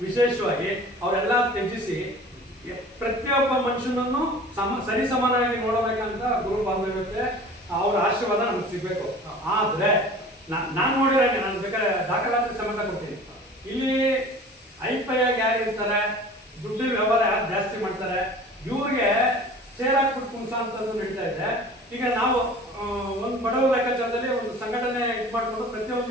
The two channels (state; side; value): normal; both; correlation 0.42